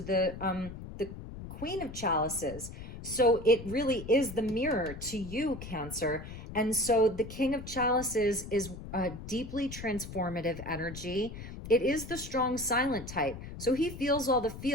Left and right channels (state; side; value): noise; left; rumble, 11 dB below the sound